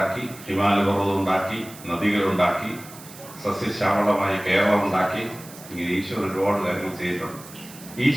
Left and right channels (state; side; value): noise; right; hiss, 18 dB below the sound